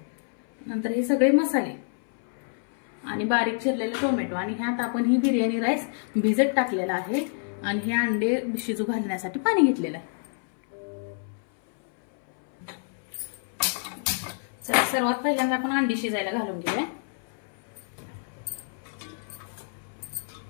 नंतर हे सगळे मसाले आणि बारीक चिरलेले टोमॅटो आणि ह्यात आपण ही बिर्याणी राईस भिजत टाकलेला आहे आणि हे अंडे शिजू घालण्यासाठी पाणी घेतलेलं आहे। चला सर्वात पहिल्यांदा आपण अंडी शिजायला घालून घेऊया।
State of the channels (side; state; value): right; silent; 60 dB below the other